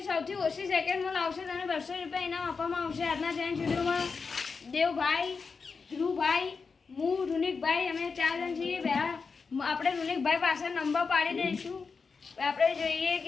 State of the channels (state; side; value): quieter; right; 5.0 dB